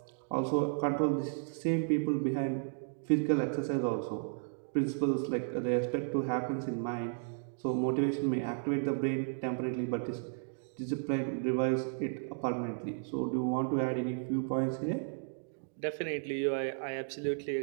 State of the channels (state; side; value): silent; left; digital silence